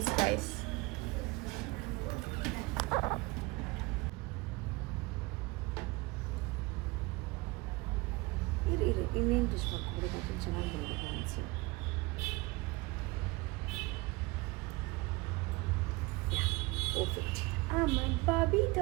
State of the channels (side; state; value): left; quieter; 23.5 dB